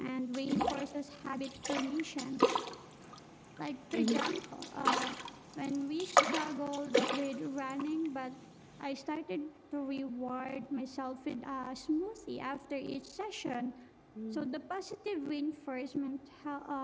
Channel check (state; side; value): identical; both; correlation 1.00